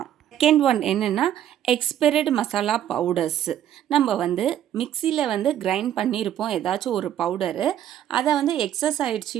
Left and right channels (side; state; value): left; quieter; 10.9 dB